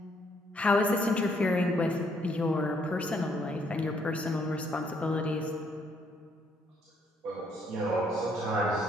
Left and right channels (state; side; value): normal; both; correlation 0.69